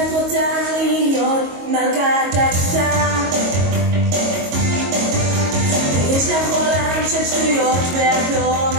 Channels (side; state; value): left; late; 22 ms